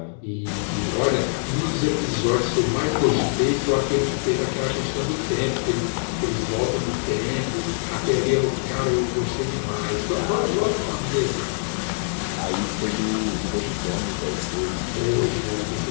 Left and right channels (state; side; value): silent; right; digital silence